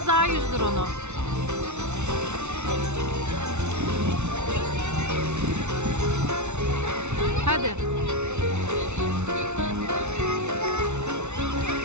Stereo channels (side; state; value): left; late; 0.82 ms